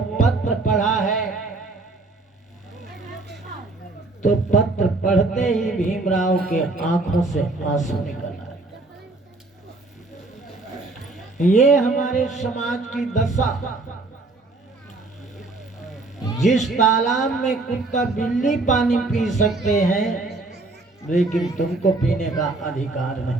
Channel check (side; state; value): left; quieter; 3.2 dB